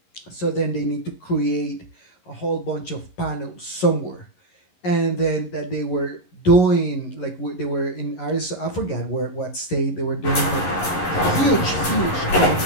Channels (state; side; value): late; right; 11 ms